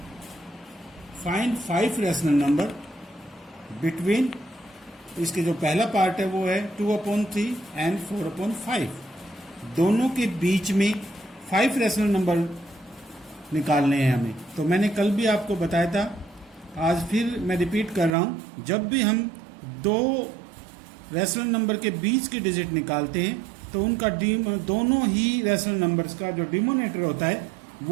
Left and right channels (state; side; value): drops out; left; at 18.2 s